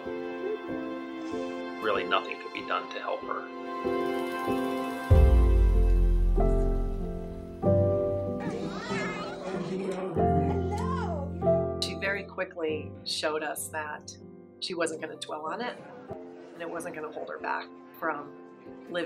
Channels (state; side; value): identical; both; correlation 1.00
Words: Really nothing could be done to help her. She very quickly showed us that she wasn't going to dwell on it, and it wasn't going to hold her back from